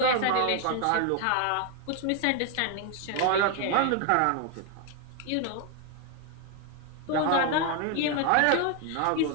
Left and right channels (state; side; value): different; both; correlation 0.01